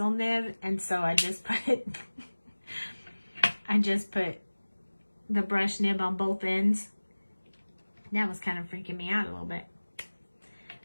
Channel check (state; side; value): inverted; both; correlation -1.00